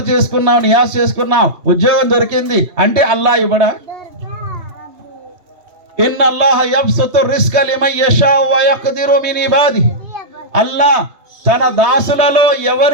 చేసుకున్నాం, నియాజ్ చేసుకున్నాం, ఉద్యోగం దొరికింది అంటే అల్లాహ్ ఇవ్వడా? ఇన్నల్లాహ యబ్సుతు రిస్క లిమన్ యషాఉ వ యఖ్దిరు మిన్ ఇబాదిహి. అల్లాహ్ తన దాసులలో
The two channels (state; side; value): late; left; 3.2 ms